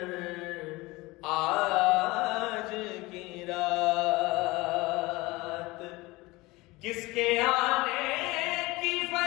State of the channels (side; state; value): right; quieter; 21.6 dB